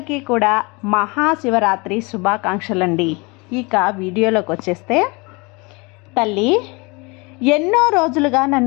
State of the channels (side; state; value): right; quieter; 27.6 dB